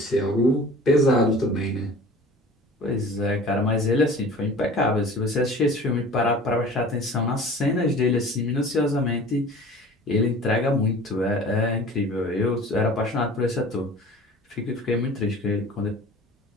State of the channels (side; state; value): both; normal; correlation 0.43